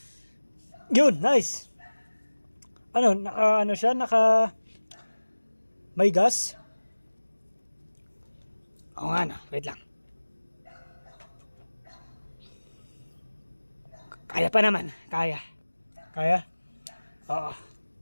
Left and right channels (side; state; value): both; inverted; correlation -1.00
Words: Yun! Nice! Naka may gas? Oo nga na, wait lang. Kaya pa naman. Kaya? Oo.